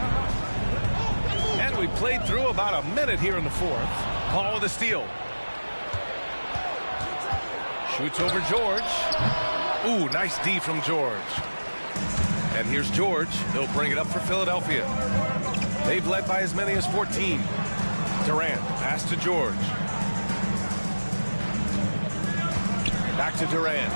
And we played through about a minute here in the fourth. Paul with a steal. Shoots over George. Ooh, nice D from George. And here's George. He'll bring it up for Philadelphia. They've led by as many as 14. Durant, pass to George. Back to Durant.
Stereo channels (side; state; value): both; inverted; correlation -1.00